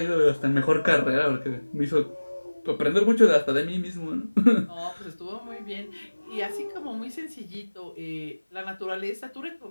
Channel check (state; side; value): inverted; both; correlation -1.00